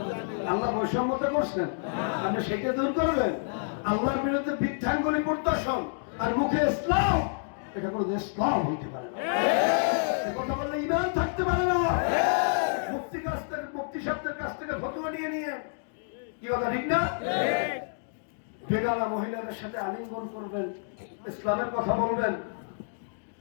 আল্লাহ বৈষম্যতা করছেন, আপনি সেটা দূর করবেন? আল্লাহর বিরুদ্ধে বৃদ্ধাঙ্গুলি প্রদর্শন আর মুখে ইসলাম, এটা কোনো ইসলাম হইতে পারে না। কথা বললে ঈমান থাকতে পারে না। মুফতি সাহেবদের কাছ থেকে ফতোয়া নিয়ে নিয়ে, কি কথা ঠিক না? বেগানা মহিলাদের সাথে আলিঙ্গন করবেন, ইসলামের কথা বলবেন।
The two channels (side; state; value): right; silent; digital silence